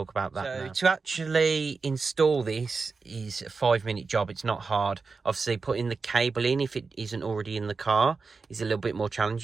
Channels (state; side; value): quieter; left; 4.5 dB